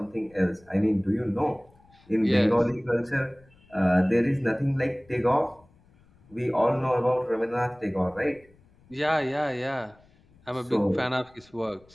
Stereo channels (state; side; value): noise; left; rumble, 30 dB below the sound